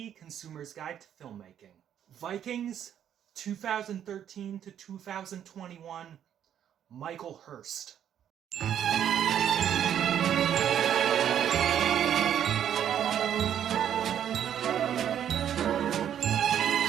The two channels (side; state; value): left; quieter; 9.8 dB